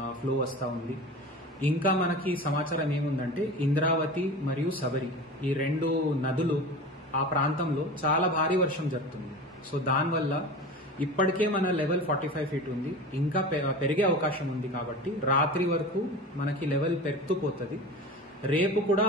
ఫ్లో వస్తూ ఉంది. ఇంకా మనకి సమాచారం ఏముందంటే ఇంద్రావతి మరియు శబరి ఈ రెండు నదులు ఆ ప్రాంతంలో చాలా భారీ వర్షం జరుగుతుంది. సో దానివల్ల ఇప్పటికే మన లెవెల్ 45 ఫీట్ ఉంది, ఇంకా పెరిగే అవకాశం ఉంది. కాబట్టి రాత్రి వరకు మనకి లెవెల్ పెరుగుతూ పోతుంది. రేపు కూడా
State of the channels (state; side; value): normal; both; correlation 0.33